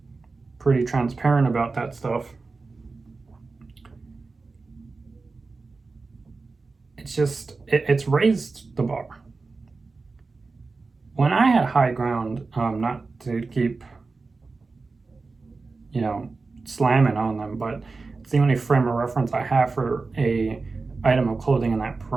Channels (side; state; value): left; quieter; 4.0 dB